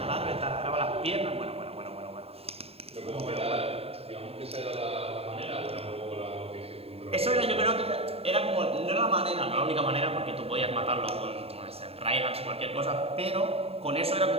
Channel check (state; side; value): late; left; 0.29 ms